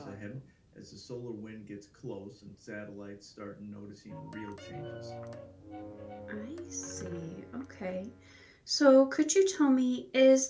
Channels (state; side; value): identical; both; correlation 1.00